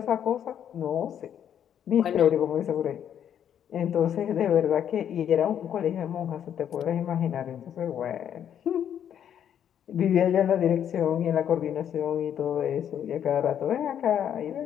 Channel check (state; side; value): quieter; right; 9.4 dB